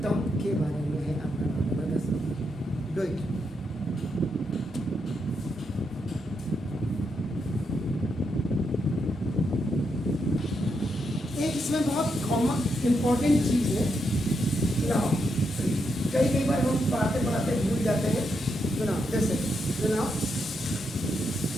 term के बारे में है आपका डू इट। एक इसमें बहुत कॉमन इंपॉर्टेंट चीज है ना, कई बार हम पढ़ाते पढ़ाते भूल जाते हैं। तो ना जैसे ना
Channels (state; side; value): normal; both; correlation 0.81